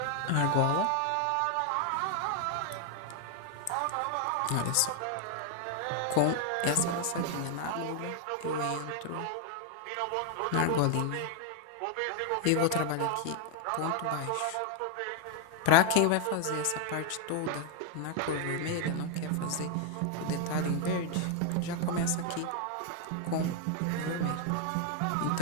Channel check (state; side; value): different; both; correlation 0.00